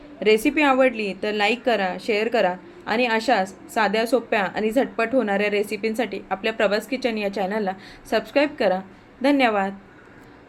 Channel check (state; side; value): identical; both; correlation 1.00